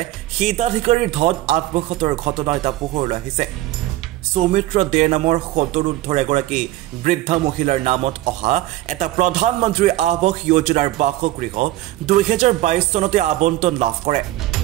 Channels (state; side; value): quieter; left; 16.1 dB